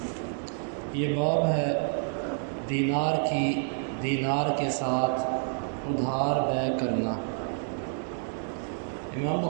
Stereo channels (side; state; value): left; silent; digital silence